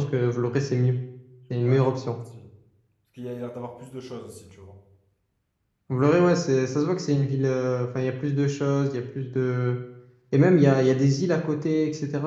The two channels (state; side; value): identical; both; correlation 1.00